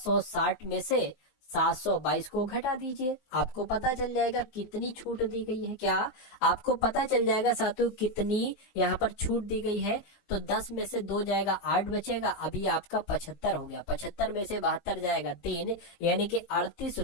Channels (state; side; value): late; right; 19 ms